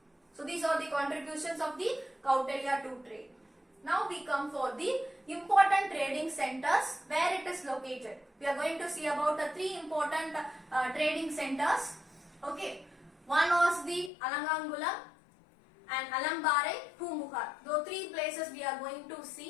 So these are the contributions of the Kautilya to trade. Now we come for the important trading centers where it is located. We are going to see about the three important trading centers. Okay. One was the Alangangulam and Alambare, Pumbuhar. Those three places we are going to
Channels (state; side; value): drops out; right; at 14.1 s